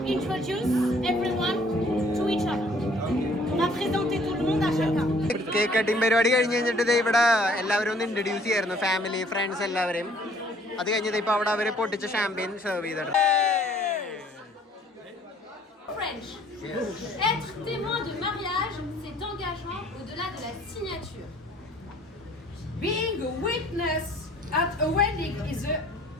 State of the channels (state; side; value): normal; both; correlation 0.58